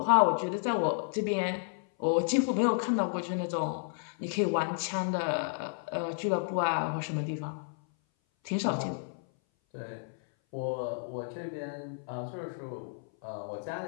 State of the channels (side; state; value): right; silent; 57 dB below the other